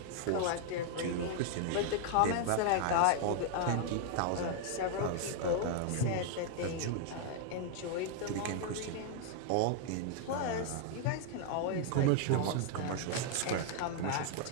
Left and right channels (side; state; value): both; different; correlation 0.00